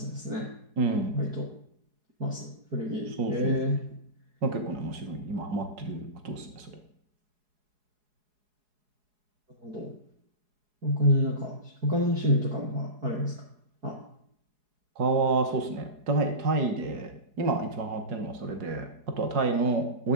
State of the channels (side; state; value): left; late; 4.8 ms